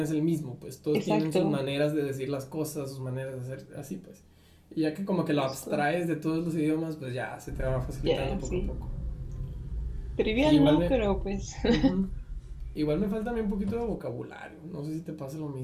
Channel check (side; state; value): both; identical; correlation 1.00